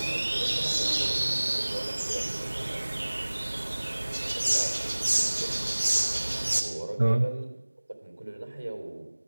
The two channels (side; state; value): both; inverted; correlation -1.00